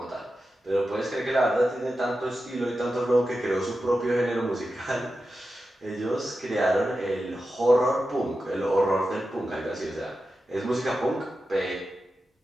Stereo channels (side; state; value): both; normal; correlation 0.91